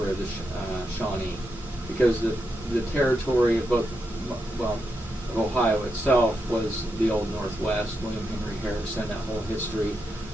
of the Shawnee, because the territory of of Ohio itself was the Old Northwest, William Henry Harrison, that whole history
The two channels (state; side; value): normal; both; correlation 0.84